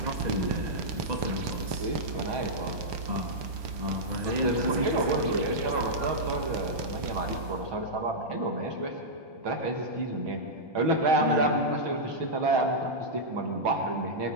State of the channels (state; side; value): late; left; 1.2 ms